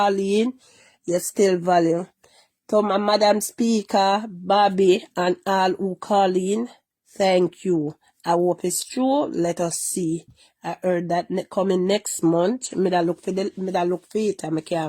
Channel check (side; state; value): both; identical; correlation 1.00